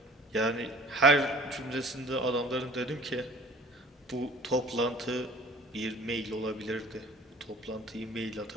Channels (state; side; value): normal; both; correlation 0.49